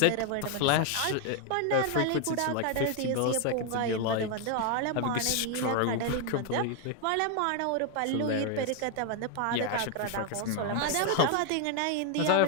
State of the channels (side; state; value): both; different; correlation 0.01